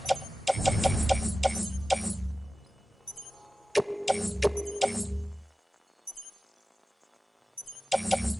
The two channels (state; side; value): normal; both; correlation 0.95